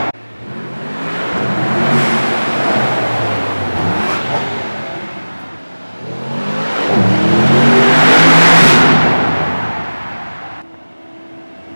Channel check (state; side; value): inverted; both; correlation -1.00